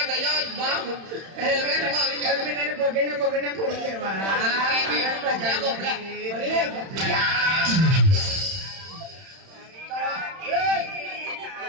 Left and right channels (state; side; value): late; left; 31 ms